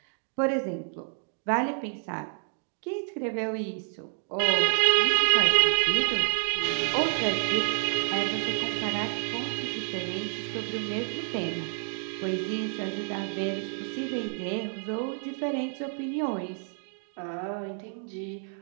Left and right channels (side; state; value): left; silent; 56 dB below the other